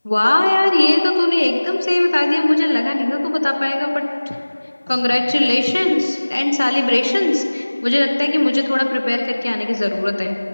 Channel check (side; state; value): both; inverted; correlation -1.00